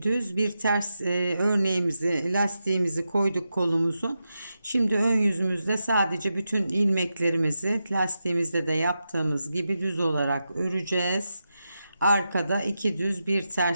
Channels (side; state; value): both; inverted; correlation -0.89